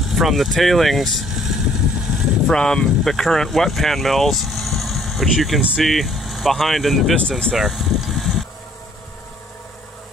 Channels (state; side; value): normal; both; correlation 0.61